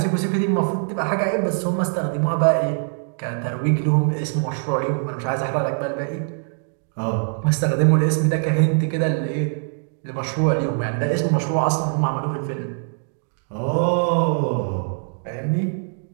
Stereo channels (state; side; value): silent; left; digital silence